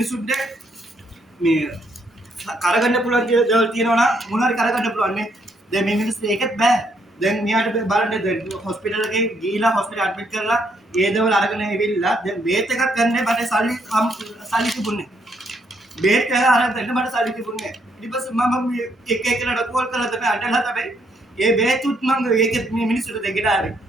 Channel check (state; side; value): normal; both; correlation 0.72